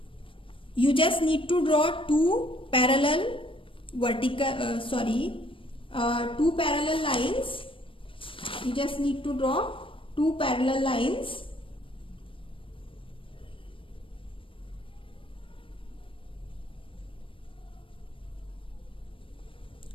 You just need to draw two parallel two parallel lines. You just need to draw two parallel lines,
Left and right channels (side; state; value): right; late; 0.25 ms